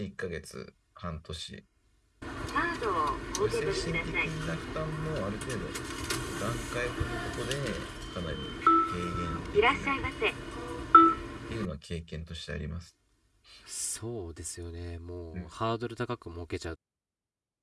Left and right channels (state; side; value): identical; both; correlation 1.00